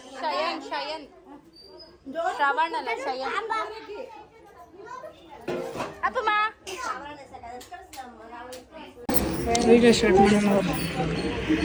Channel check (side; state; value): both; identical; correlation 1.00